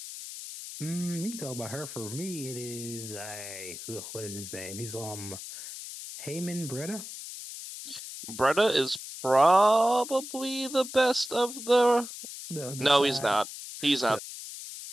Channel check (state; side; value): noise; left; hiss, 10 dB below the sound